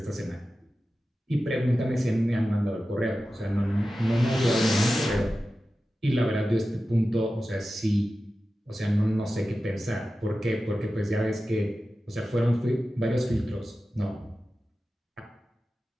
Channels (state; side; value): normal; both; correlation 0.94